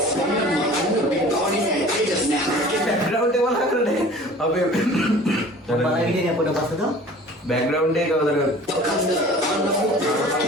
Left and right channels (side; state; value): both; normal; correlation 0.45